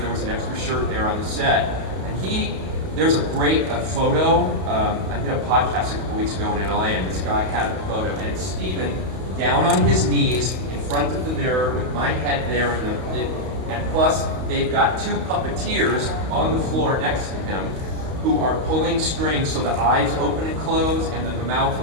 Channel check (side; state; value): left; late; 31 ms